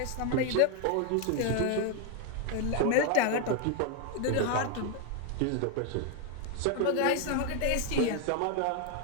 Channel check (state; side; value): different; both; correlation 0.01